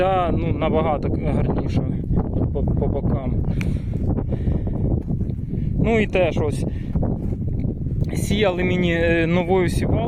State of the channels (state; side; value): identical; both; correlation 1.00